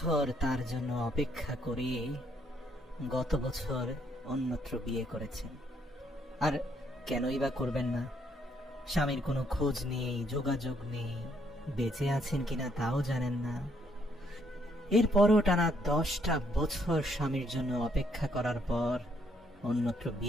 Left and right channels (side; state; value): both; normal; correlation 0.71